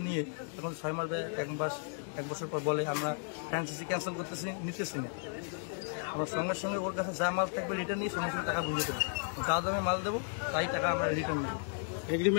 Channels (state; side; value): silent; right; 55 dB below the other